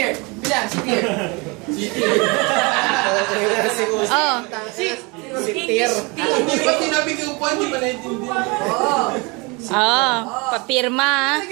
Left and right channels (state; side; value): quieter; left; 28.0 dB